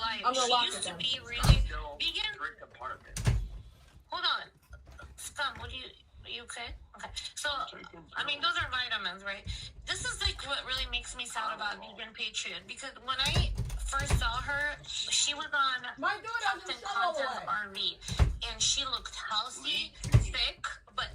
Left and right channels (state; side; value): identical; both; correlation 1.00